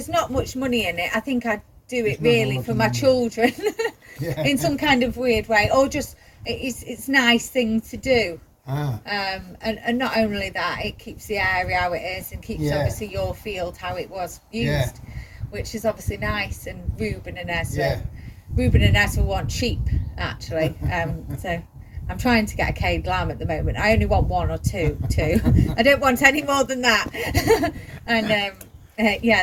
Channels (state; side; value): identical; both; correlation 1.00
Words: not much money in it. I think I'd do it really for my children, in some kind of weird way, or just it's a nice thing to do. And not only that, it keeps the area how it is, and keeps obviously your field how it was used, which is obviously nice. And Ruben and Ezra want sheep actually. So I'm trying to get a caged lamb at the moment. I only want one or two. I don't want any more than that. And